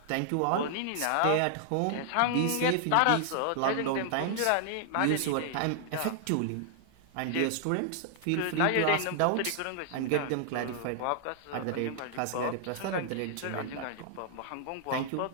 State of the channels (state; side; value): different; both; correlation 0.00